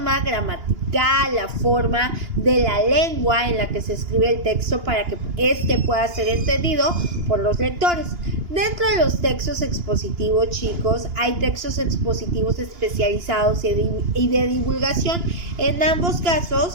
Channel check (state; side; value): late; left; 2.9 ms